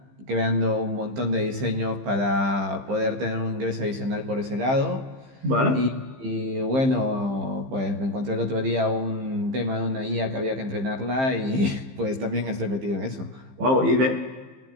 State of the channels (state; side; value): late; left; 15 ms